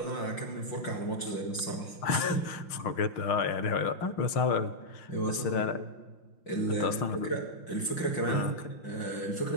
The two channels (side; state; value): right; late; 5.8 ms